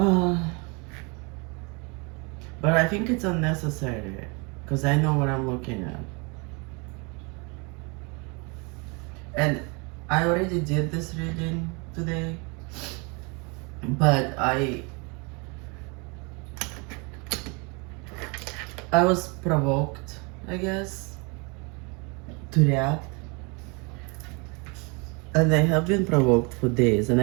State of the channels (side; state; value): left; quieter; 30.8 dB